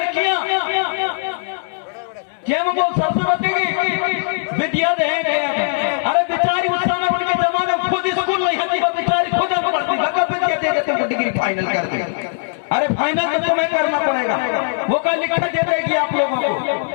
सरस्वती की विद्या देंगे। अरे बेचारी उस समय उनके जमाने में खुद स्कूल नहीं होती, वो बेचारी खुद पढ़ती, विद्या दे देते, डिग्री फाइनल कर दी। अरे फाइनल तो तुम्हें करना पड़ेगा। वो कल लिखा दे देगी आप लोगों को।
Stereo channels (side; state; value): right; silent; 63 dB below the other